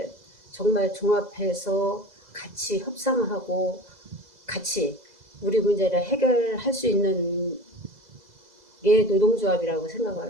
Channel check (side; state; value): left; late; 2.0 ms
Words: 정말 종합해서 같이 협상하고 같이 우리 문제를 해결할 수 있는 게 노동조합이라고